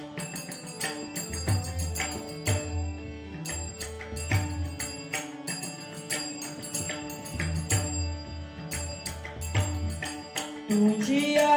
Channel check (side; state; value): both; identical; correlation 1.00